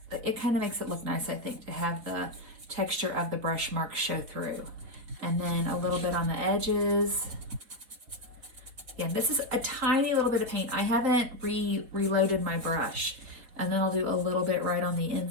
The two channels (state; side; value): late; left; 4.4 ms